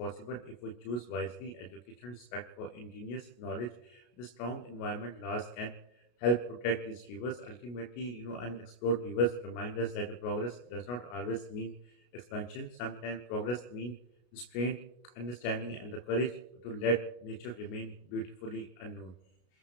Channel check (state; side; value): late; right; 33 ms